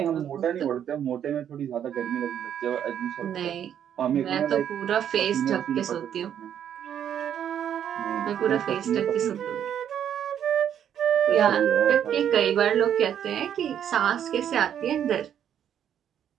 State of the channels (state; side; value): quieter; left; 9.4 dB